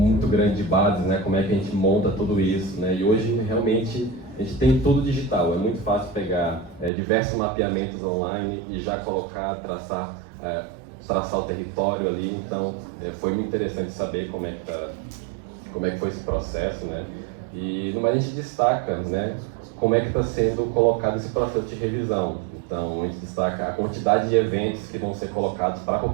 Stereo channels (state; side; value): drops out; left; at 6.9 s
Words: grande de bases, né? Como é que a gente monta tudo isso, né? E hoje, realmente, a gente tem tudo digital. É muito fácil pegar diversos mapeamentos online e já colocar, traçar o território ali. Então, foi muito interessante saber como é que foi esse processo, né? E, no mais, a gente destaca, né? Como é que está sendo colocado esse processo de revisão. Então, a gente destaca a quantidade de eventos que vão ser colocados para a